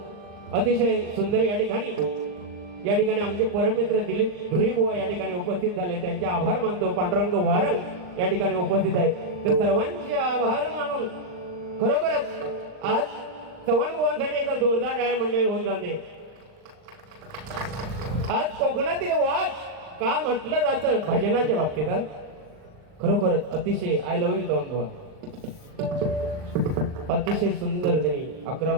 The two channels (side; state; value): left; late; 39 ms